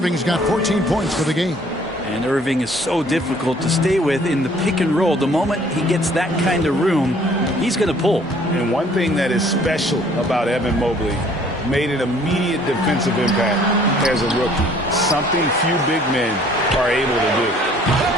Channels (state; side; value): normal; both; correlation 0.57